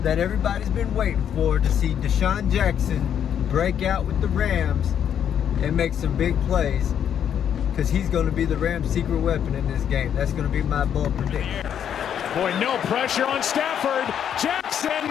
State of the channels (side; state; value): right; quieter; 9.0 dB